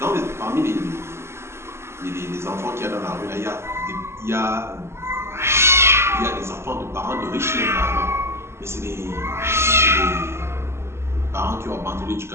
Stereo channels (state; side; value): late; left; 0.13 ms